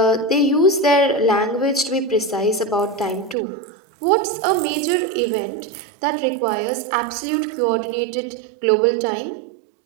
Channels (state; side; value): drops out; left; at 3.4 s